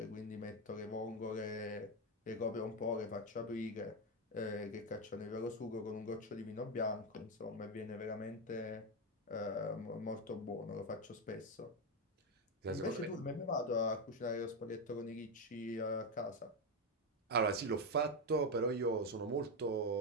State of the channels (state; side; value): normal; both; correlation 0.08